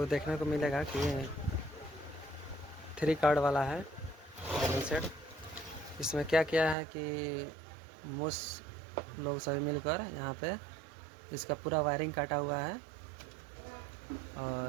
देखने को मिलेगा कि 3 कार्ड वाला है वेल्डिंग सेट। इसमें क्या किया है कि मोस्ट लोग सभी मिलकर यहाँ पे इसका पूरा वायरिंग काटा हुआ है,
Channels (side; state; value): left; drops out; at 6.8 s